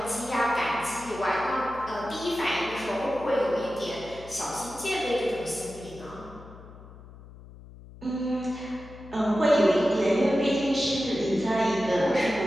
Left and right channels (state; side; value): noise; left; hum, 18 dB below the sound